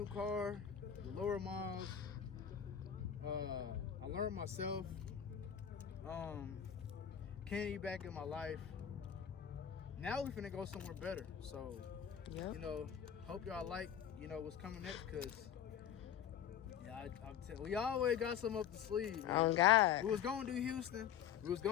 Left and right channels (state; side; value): quieter; right; 9.2 dB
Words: car, lower miles. I learned myself. Kennedy back in my life. Now we finna go somewhere better. So, yep. Hope y'all like, what's coming next, because, yeah, we always got something up the sleeve, man. Oh, God. We was going to do Houston. We was